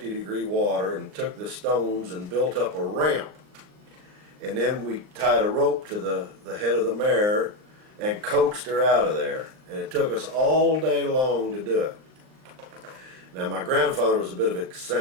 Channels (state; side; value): late; left; 39 ms